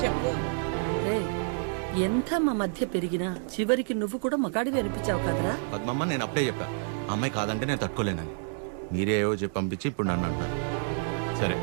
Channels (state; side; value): silent; left; digital silence